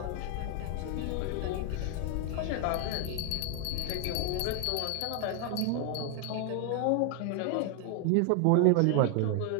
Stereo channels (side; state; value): both; different; correlation 0.01